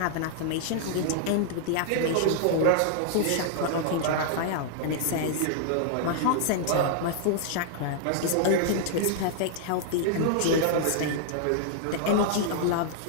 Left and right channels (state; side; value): different; both; correlation -0.01